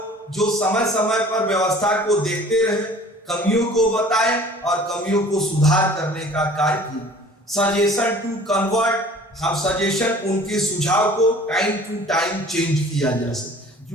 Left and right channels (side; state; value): both; normal; correlation 0.48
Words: जो समय समय पर व्यवस्था को देखते रहे, कमियों को बताए और कमियों को सुधार करने का कार्य किया। सजेशन टू कन्वर्ट, हम सजेशन उनके सुझाव को टाइम टू टाइम चेंज किया जा सके।